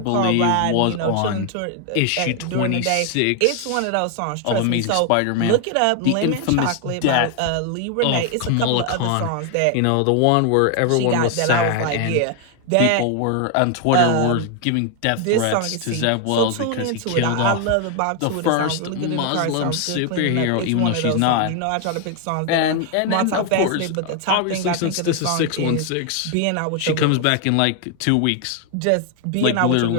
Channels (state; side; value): different; both; correlation 0.00